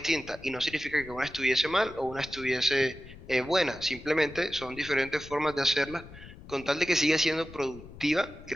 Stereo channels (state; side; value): noise; left; rumble, 17 dB below the sound